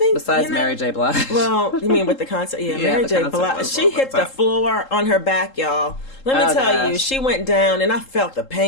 besides Mary J. Blige. Well, you mean with the concert? Yeah, Mary J. Blige. She hit the floor on her back, y'all. Let me tell you, she went down, and I felt the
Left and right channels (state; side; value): late; right; 3.8 ms